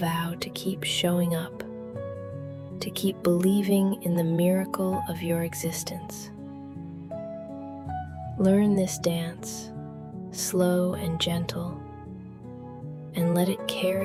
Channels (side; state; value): both; identical; correlation 1.00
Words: to keep showing up, to keep believing in the miracle of your existence. Learn this dance, slow and gentle, and let it